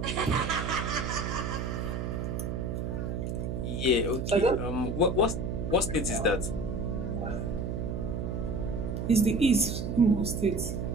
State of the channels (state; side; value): noise; right; hum, 2 dB below the sound